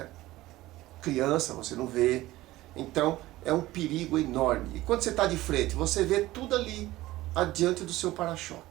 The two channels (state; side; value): quieter; left; 17.1 dB